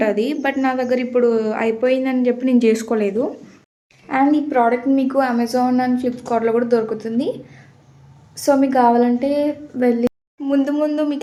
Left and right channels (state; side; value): identical; both; correlation 1.00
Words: బట్ నా దగ్గర ఇప్పుడు అయిపోయిందని చెప్పి నేను చేసుకోలేదు. అండ్ ఈ ప్రోడక్ట్ మీకు అమెజాన్ అండ్ ఫ్లిప్కార్ట్లో కూడా దొరుకుతుంది. సో మీకు కావాలంటే వెళ్ళి ముందు